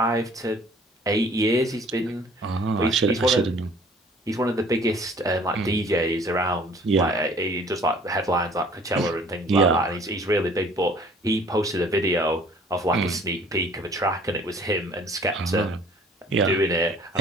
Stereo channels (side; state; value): both; normal; correlation 0.53